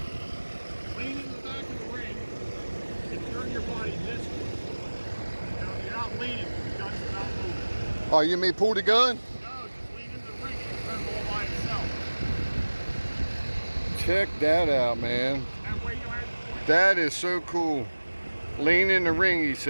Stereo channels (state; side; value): inverted; both; correlation -1.00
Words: Lean in the back of the ring and turn your body this way. You're not leaning, the gun's not moving. Oh, you mean pull the gun? No, just lean in the ring and turn all by itself. Check that out, man. That way you don't have to point. That is so cool. Lean in the ring, he